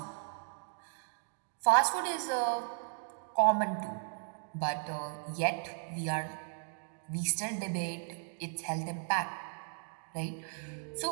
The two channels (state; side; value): silent; left; 54 dB below the other